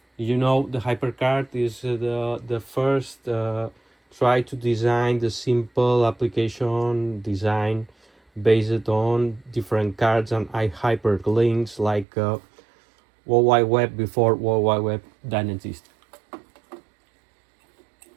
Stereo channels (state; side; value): drops out; left; at 12.1 s